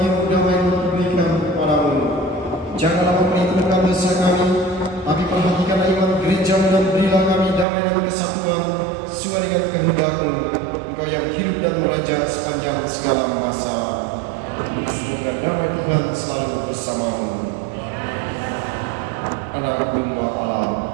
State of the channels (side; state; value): left; drops out; at 7.7 s